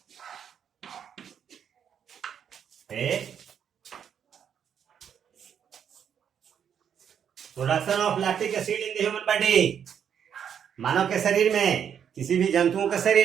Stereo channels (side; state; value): left; quieter; 8.3 dB